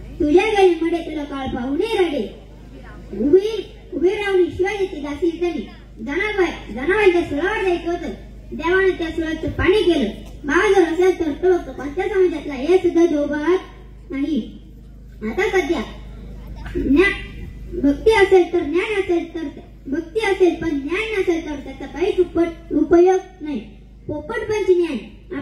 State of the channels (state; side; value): identical; both; correlation 1.00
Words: तुझ्या गेले मध्ये तुला काळ पाहुणे रडे. उभी राहून शिवाजीची दासी झाली. जनावरांच्या सुळावर जायचं होतं. देवाने त्या सुळाचं पाणी केलं. भाव जर असेल तर तो कोणत्या समाजातला हे सुद्धा दोघात नाही. आता सध्या भक्ती असेल तर ज्ञान असेल तर भक्ती असेल पण ज्ञान नसेल तर त्याचा काहीच उपयोग नाही. पोपटपंची ज्ञान